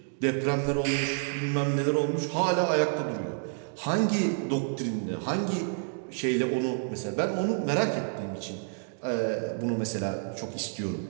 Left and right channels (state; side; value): silent; left; 59 dB below the other